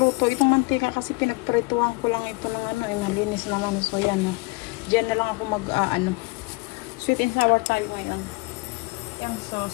Itong mantika kasi pinagprituhan ko lang ito ng malinis naman. So, ayan. Dyan na lang ako sweet and sour tayo ngayon. Ayan. So,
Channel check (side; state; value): right; quieter; 26.5 dB